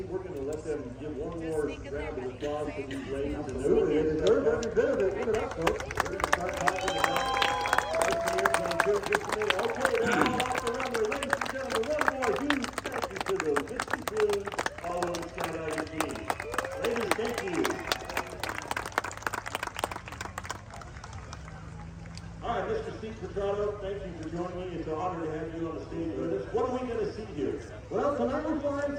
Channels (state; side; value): identical; both; correlation 1.00